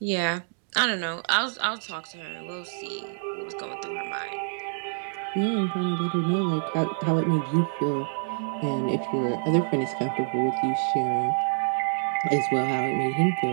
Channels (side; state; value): left; silent; digital silence